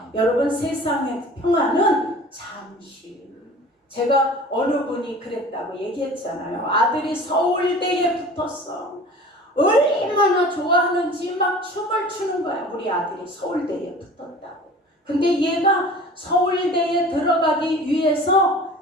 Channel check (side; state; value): both; normal; correlation 0.42